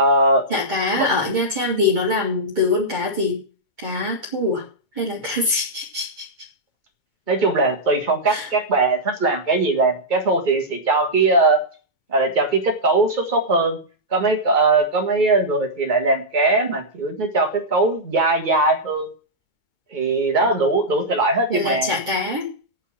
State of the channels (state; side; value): late; right; 2.2 ms